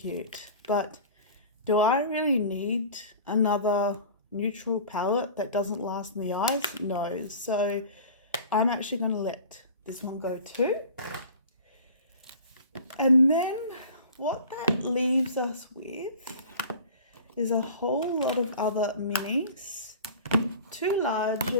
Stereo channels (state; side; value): inverted; both; correlation -0.40